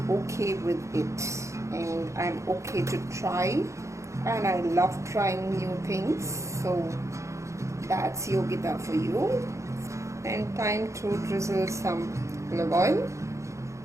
okay with it and I'm okay to try, and I love trying new things. So that's Yogita for you. And time to drizzle some olive oil.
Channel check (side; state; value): left; late; 0.14 ms